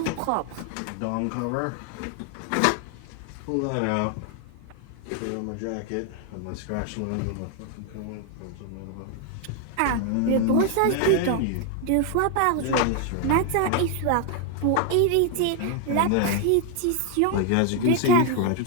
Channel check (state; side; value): different; both; correlation 0.01